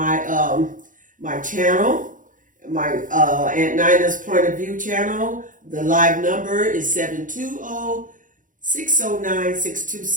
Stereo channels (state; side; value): late; left; 0.38 ms